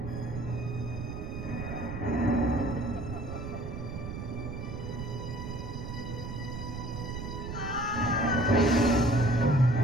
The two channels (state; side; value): noise; right; rumble, 7 dB below the sound